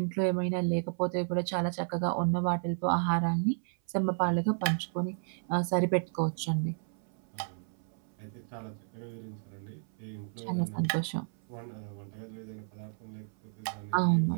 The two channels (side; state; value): left; silent; 56 dB below the other